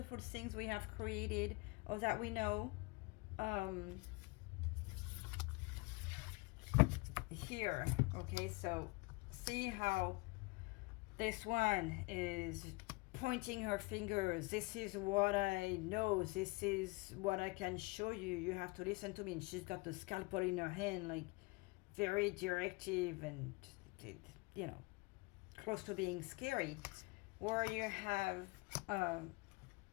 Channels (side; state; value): right; quieter; 25.7 dB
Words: things we have created or that we know, here. Okay, so see how this one is pointing her fingers. This is what I know. This is what I can show you. You have to listen to me. And she's got the scalpel in her hand, like very directive and, you know, close to being scary. Where you have